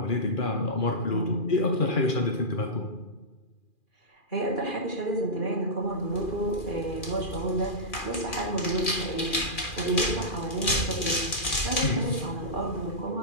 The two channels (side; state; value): right; late; 2.4 ms